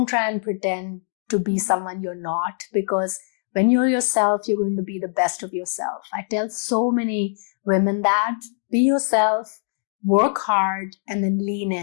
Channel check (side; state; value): right; silent; digital silence